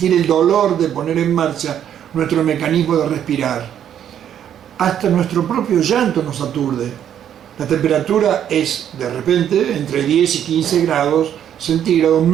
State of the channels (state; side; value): quieter; left; 9.8 dB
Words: el dolor de poner en marcha nuestro mecanismo de respirar. Hasta nuestro propio llanto nos aturde. La temperatura es, de repente, entre 10 y 15 grados centígrados